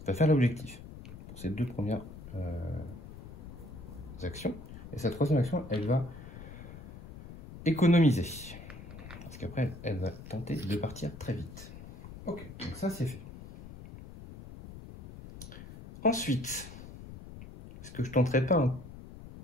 va faire l'objectif pour ces 2 premières actions. Et sa 3e action, elle va économiser. Parce qu'après, elle va tenter de partir très vite. Ok, donc ça c'est fait. Ensuite, est-ce que je tenterai pas un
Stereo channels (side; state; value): left; noise; rumble, 14 dB below the sound